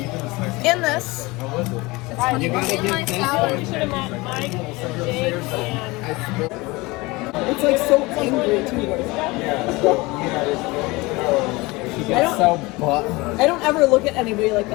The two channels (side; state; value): right; quieter; 23.0 dB